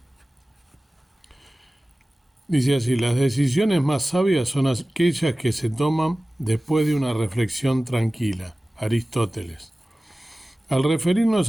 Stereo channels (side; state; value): both; normal; correlation 0.97